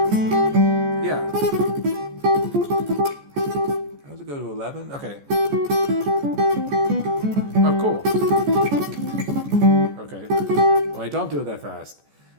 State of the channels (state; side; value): late; left; 14 ms